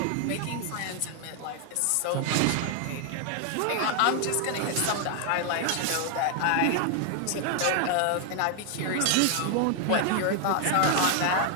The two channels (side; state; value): both; different; correlation 0.00